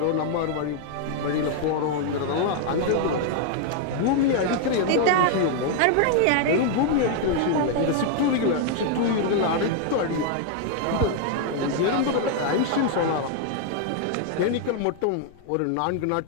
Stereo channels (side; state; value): both; different; correlation 0.00